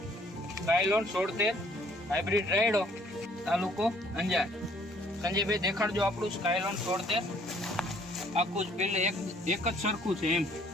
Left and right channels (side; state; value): both; normal; correlation 0.61